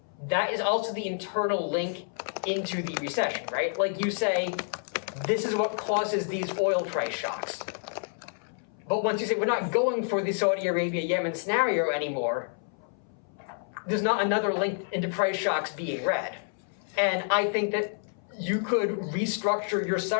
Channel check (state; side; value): silent; right; 59 dB below the other